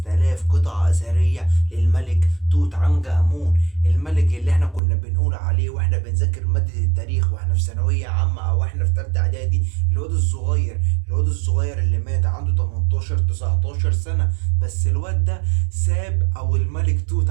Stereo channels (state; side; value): drops out; left; at 4.8 s